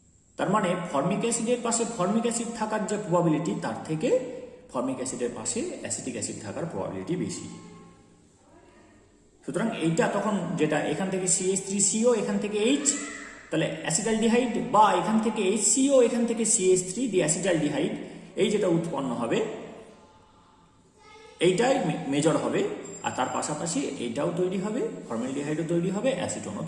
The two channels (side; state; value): both; identical; correlation 1.00